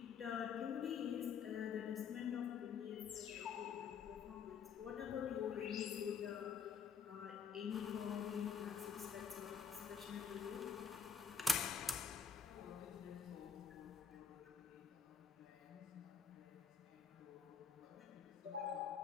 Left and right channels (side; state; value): right; quieter; 6.4 dB